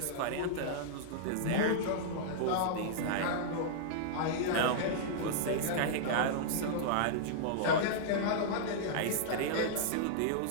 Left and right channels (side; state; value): both; different; correlation -0.02